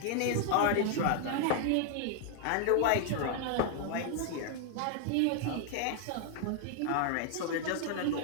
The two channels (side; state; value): both; different; correlation 0.00